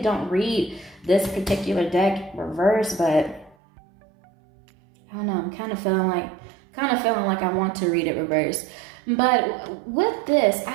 don't read this particular deck reverse, but I don't know. I'm kind of feeling like I want to read it reverse. But with this, I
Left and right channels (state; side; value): drops out; left; at 3.6 s